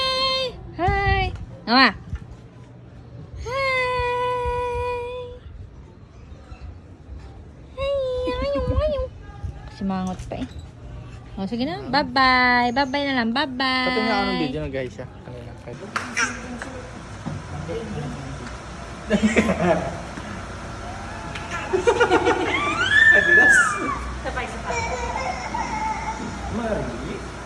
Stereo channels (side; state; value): both; identical; correlation 1.00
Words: Hi! Nawa! Hi! Hi! Simangot pa eh. O, sige na. Bye-bye. Bye-bye na lang. Bye-bye. Pati nga anong video na guys siya. Kanina. Adidas. Sabay-sabay. Mari.